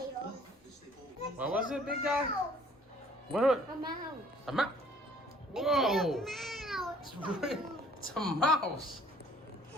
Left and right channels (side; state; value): both; normal; correlation 0.56